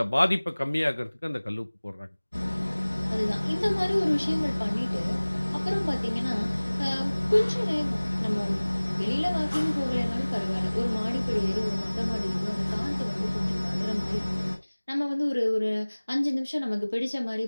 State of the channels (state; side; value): inverted; both; correlation -1.00